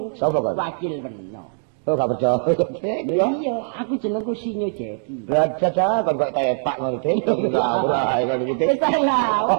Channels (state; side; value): silent; left; digital silence